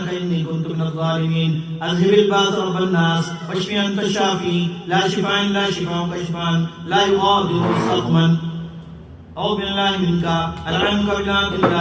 إني كنت من الظالمين. أذهب الباس رب الناس واشف أنت الشافي، لا شفاء إلا شفاءك شفاء لا يغادر سقما. أعوذ بالله منك ألعنك بلعنة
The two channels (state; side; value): identical; both; correlation 1.00